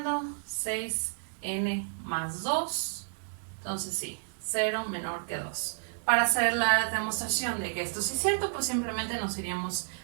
6n más 2, entonces sí, 0 menor que 2. Para hacer la demostración de que esto sí es cierto, pues simplemente nos iríamos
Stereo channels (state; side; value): silent; left; digital silence